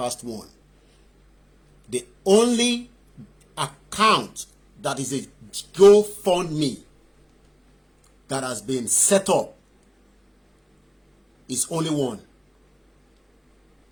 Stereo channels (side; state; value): both; identical; correlation 1.00